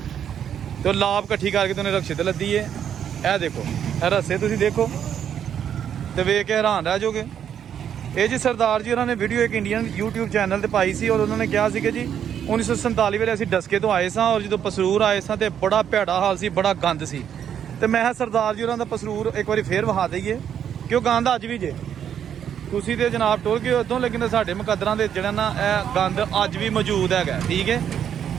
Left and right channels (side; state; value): left; quieter; 9.0 dB